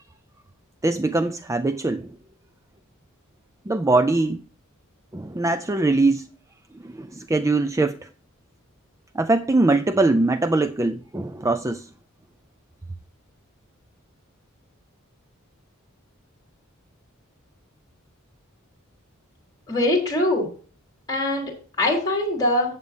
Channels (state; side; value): normal; both; correlation 0.63